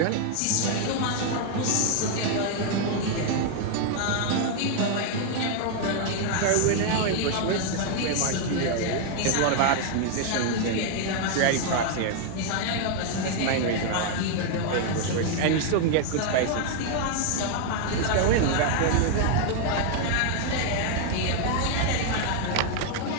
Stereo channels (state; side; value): different; both; correlation 0.00